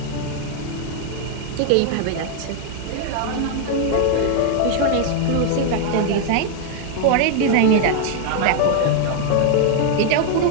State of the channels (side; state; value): both; different; correlation 0.00